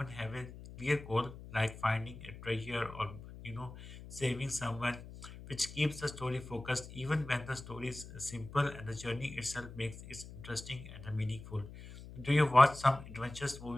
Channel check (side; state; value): left; noise; hum, 14 dB below the sound